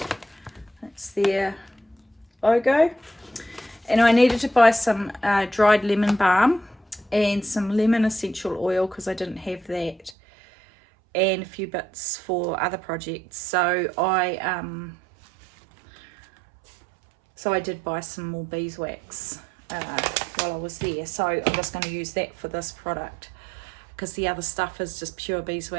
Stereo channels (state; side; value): drops out; left; at 10.2 s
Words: That's their logo. And I needed to buy some dried lemon balm and some lemon essential oil because I didn't have that, and a few bits for other projects. So I did buy some more beeswax while I was there. So I'm just going to use that for this product because the other stuff is just pure